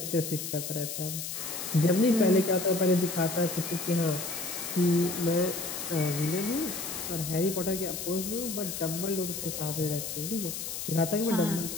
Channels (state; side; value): noise; left; hiss, 6 dB below the sound